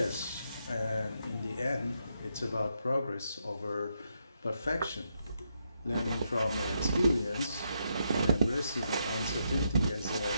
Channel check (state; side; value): inverted; both; correlation -0.80